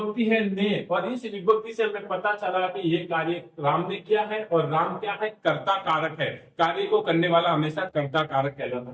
है ने, और इस विभक्ति से हमें पता चला कि ये कार्य राम ने किया है। और राम क्या है? कर्ता कारक है। कार्य को करने वाला हमेशा कर्ता कारक कहलाता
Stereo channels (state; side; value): identical; both; correlation 1.00